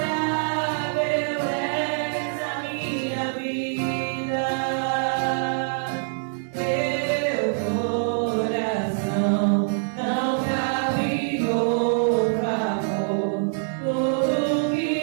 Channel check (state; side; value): silent; left; digital silence